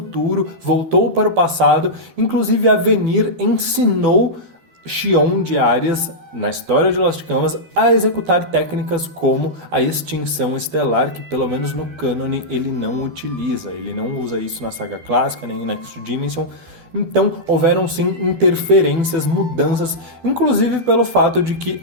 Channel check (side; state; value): left; late; 12 ms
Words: voltou para o passado. Inclusive, Avenir ensinou Xion de Arias, na história de Lost Canvas, a executar técnicas como a extinção estelar, que pelo menos no cânone ele não utiliza. Ele não usa isso na saga clássica, nem em Next Dimension. Então houveram sim interferências, mudanças, inclusive pelo fato de que